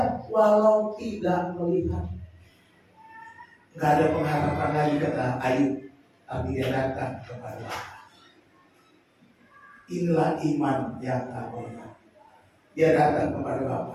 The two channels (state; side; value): identical; both; correlation 1.00